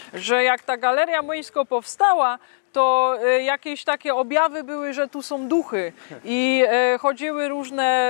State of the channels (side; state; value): right; silent; 65 dB below the other